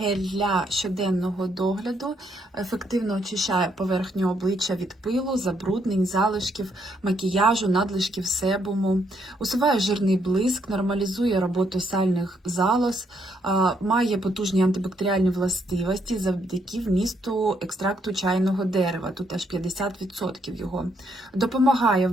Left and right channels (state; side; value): normal; both; correlation 0.73